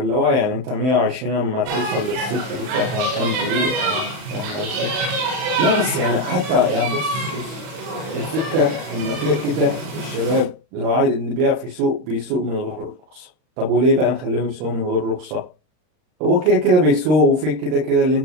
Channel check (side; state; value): left; late; 39 ms